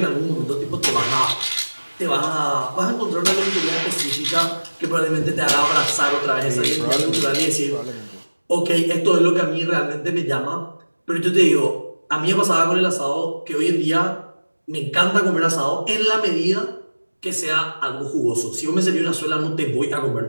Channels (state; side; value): inverted; both; correlation -1.00